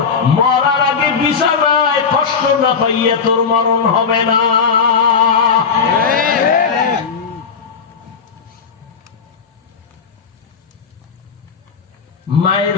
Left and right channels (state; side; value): quieter; right; 5.9 dB